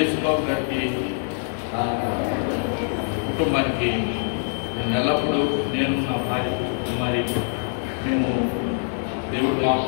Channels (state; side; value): silent; right; digital silence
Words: గారికి కుటుంబానికి ఎల్లప్పుడూ నేను నా భార్య కుమారి మేము దేవుడు